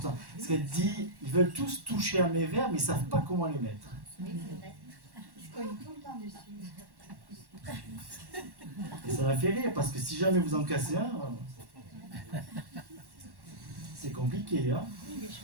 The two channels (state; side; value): late; left; 1.1 ms